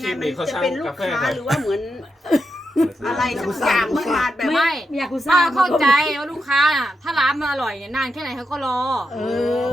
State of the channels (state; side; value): normal; both; correlation 0.86